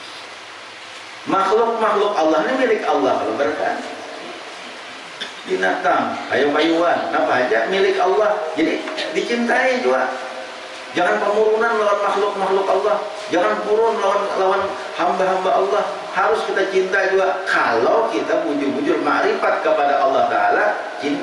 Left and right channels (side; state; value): both; identical; correlation 1.00